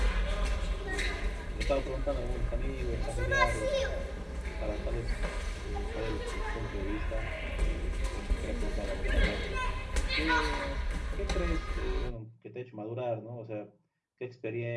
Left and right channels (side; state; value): both; identical; correlation 1.00